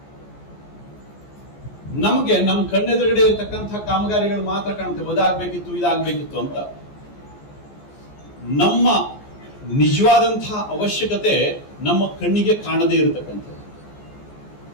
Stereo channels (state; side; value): late; right; 14 ms